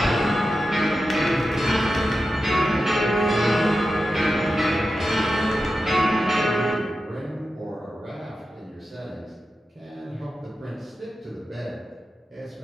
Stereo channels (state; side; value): normal; both; correlation 0.91